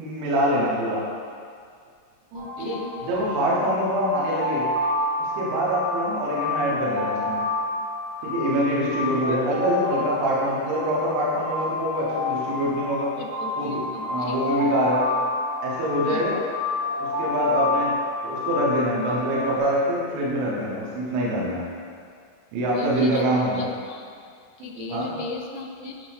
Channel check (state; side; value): late; left; 32 ms